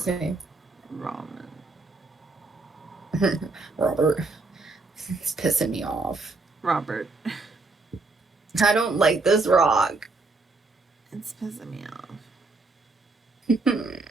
me. Ramen. Robert. It's pissing me off. Robert. I don't like this rock. It's pissing me off.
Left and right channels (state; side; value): quieter; left; 3.5 dB